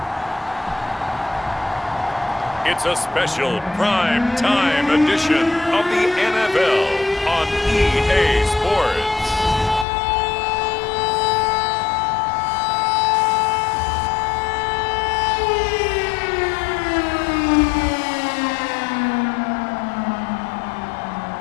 it's a special prime time edition of the NFL on EA Sports.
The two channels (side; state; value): right; drops out; at 9.9 s